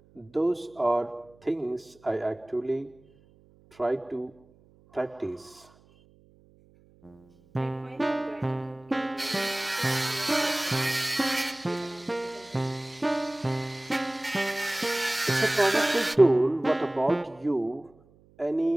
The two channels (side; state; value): right; noise; hum, 29 dB below the sound